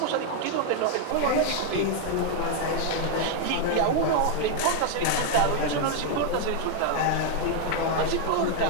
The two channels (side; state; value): both; different; correlation 0.00